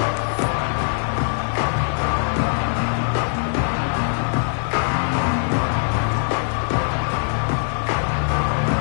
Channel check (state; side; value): silent; right; 59 dB below the other